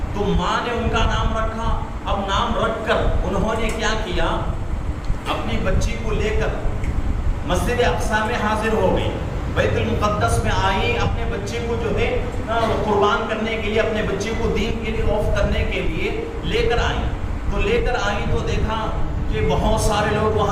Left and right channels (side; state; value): both; identical; correlation 1.00